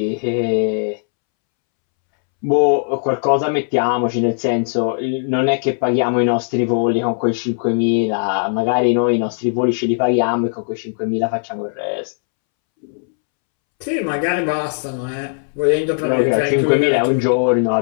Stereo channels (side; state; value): right; silent; 67 dB below the other